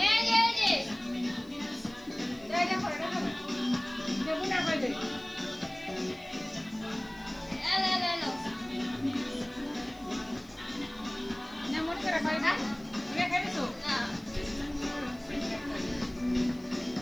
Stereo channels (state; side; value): noise; left; hiss, 27 dB below the sound